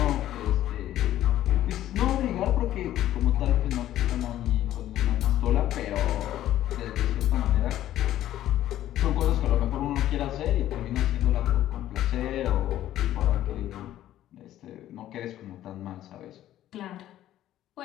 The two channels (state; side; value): quieter; right; 13.0 dB